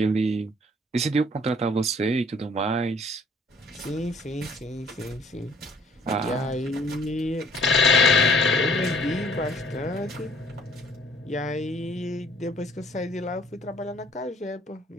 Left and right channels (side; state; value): both; normal; correlation 0.58